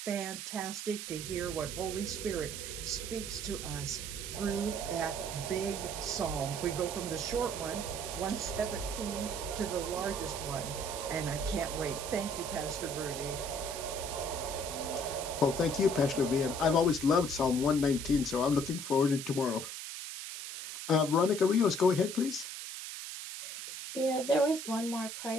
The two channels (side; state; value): right; noise; hiss, 7 dB below the sound